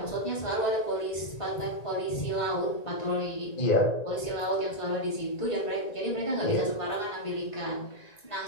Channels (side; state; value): right; late; 1.9 ms